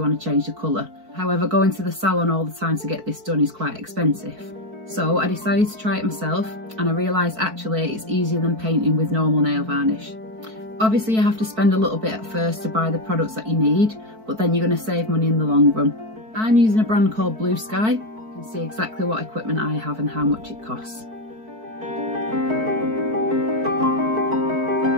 want to change the colour. However, going to the salon all the time to get this done is quite expensive. So I decided to try it myself and I realised actually it's easier than painting with normal nail varnish. Obviously you have to spend a little bit at first to buy the products that you need, but then you're going to save money in the long run. I'm using a brand called Blue Sky. You can see exactly what equipment I have and how much it costs.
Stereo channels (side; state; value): left; late; 4.5 ms